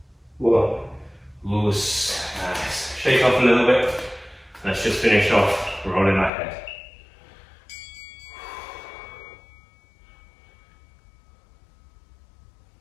1. Loose. Nice. Shake off a little bit. Let's just finish off rolling our head.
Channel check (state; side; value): drops out; right; at 6.3 s